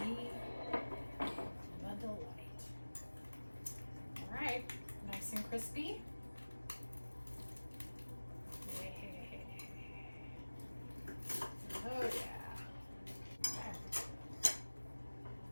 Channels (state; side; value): inverted; both; correlation -1.00